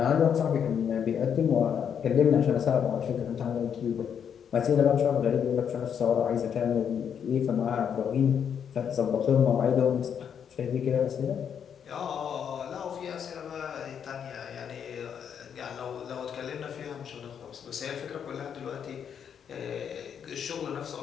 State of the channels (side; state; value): right; quieter; 8.0 dB